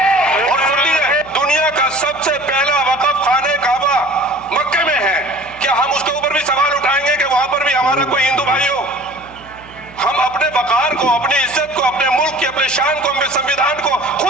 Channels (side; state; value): right; noise; hum, 22 dB below the sound